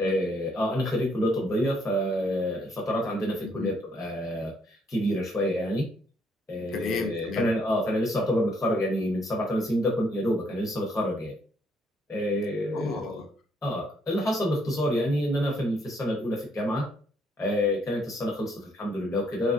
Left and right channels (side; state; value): both; normal; correlation 0.70